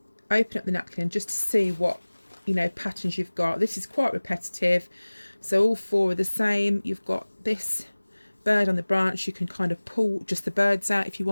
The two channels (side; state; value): both; inverted; correlation -1.00